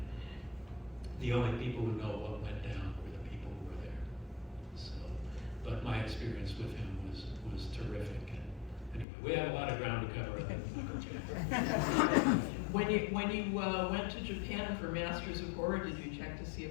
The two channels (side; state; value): right; drops out; at 9.1 s